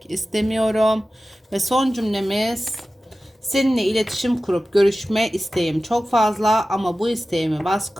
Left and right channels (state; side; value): normal; both; correlation 0.95